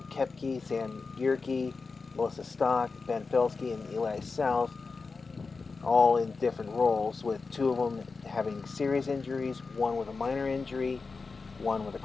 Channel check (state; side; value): quieter; right; 4.4 dB